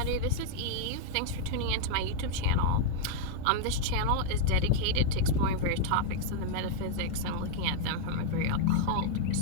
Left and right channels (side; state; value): both; different; correlation 0.00